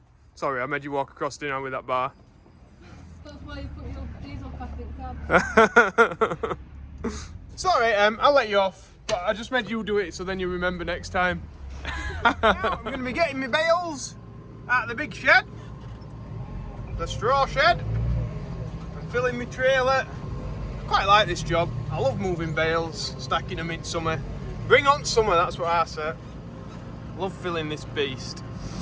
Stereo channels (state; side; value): identical; both; correlation 1.00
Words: Sorry, I made you walk across dinner with that bar. That's why you put your diesel pack in cab. Sorry, I'll let you off, but I just made you do it so then you remember next time. Now, I'm going to be getting my bales out of the big shed, the straw shed, and filling my trailer. I quite like this job. I love moving bales, stacking them in summer. Bring on summer, that's what I say. Love filling this beast.